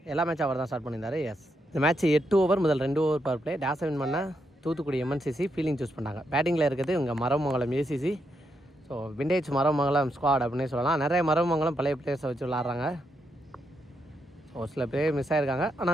எல்லா மேட்சும் அவர் தான் ஸ்டார்ட் பண்ணியிருந்தார். எஸ், இந்த மேட்ச் 8 ஓவர் முதல் 2 ஓவர் பவர் பிளே. டேஸை வின் பண்ணால் தூத்துக்குடி எம்என்சிசி ஃபீலிங் சூஸ் பண்ணாங்க. பேட்டிங்கில் இருக்கிறது இங்கே Maramangalam ACC. So vintage Maramangalam squad அப்படின்னே சொல்லலாம். நிறைய மரமங்கலம் பழைய பிளேயர்ஸை வச்சு விளாட்றாங்க. ஸோ சில பேர் மிஸ் ஆகிருக்காங்க,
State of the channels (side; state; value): both; normal; correlation 0.80